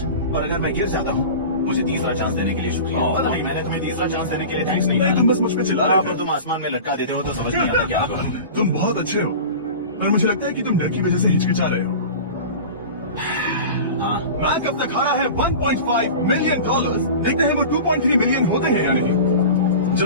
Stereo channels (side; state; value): both; inverted; correlation -0.34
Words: और अगर मैं गिर जाता हूँ, मुझे तीसरा चांस देने के लिए शुक्रिया। पता नहीं, मैंने तुम्हें तीसरा चांस देने के लिए थैंक्स नहीं नहीं, कहा। तुम बस मुझ पे चिल्ला रहे अगर थे। तुम आसमान में लटका देते हो तो समझ नहीं आता क्या होगा। तुम बहुत अच्छे हो, पर मुझे लगता है कि तुम डर की वजह से हिचकिचा रहे हो। हाँ, मैक अब तक हारा है $1.5 मिलियन। देखते हैं वो 2.3 मिलियन होते हैं या नहीं।